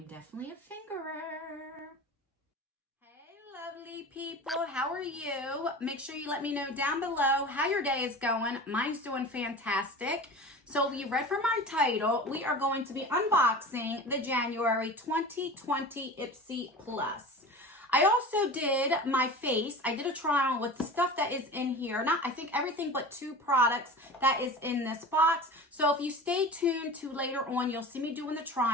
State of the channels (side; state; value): both; normal; correlation 0.34